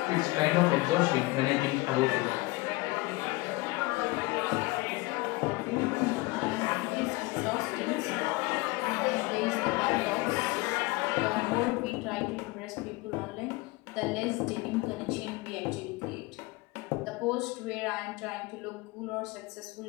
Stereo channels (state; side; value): quieter; right; 22.7 dB